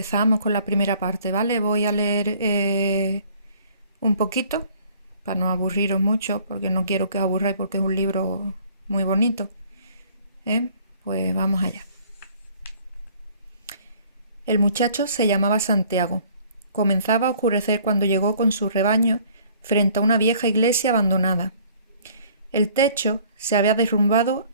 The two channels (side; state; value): both; inverted; correlation -0.56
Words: con la primera parte, ¿vale? Voy a leer un poquito, para no aburriros mucho, porque no quiero que os aburráis, porque es un libro muy bonito. Pues vamos allá. El muchacho se llamaba Santiago. Comenzaba a oscurecer cuando llegó con su rebaño frente a una vieja iglesia abandonada. El techo se había derrumbado